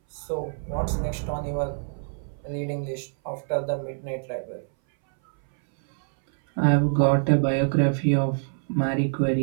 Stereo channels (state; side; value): silent; left; 60 dB below the other